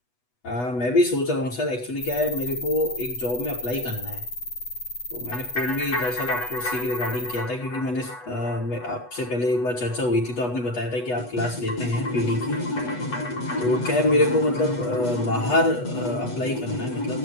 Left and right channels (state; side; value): late; right; 8.2 ms